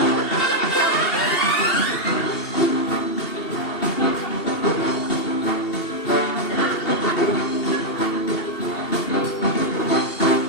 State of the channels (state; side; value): late; right; 2.7 ms